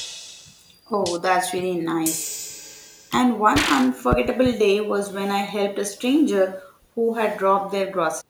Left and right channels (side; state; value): both; identical; correlation 1.00